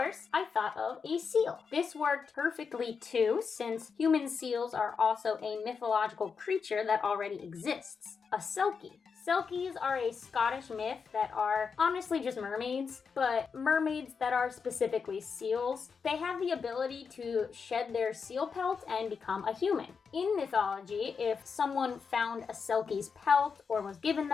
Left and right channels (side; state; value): right; quieter; 5.7 dB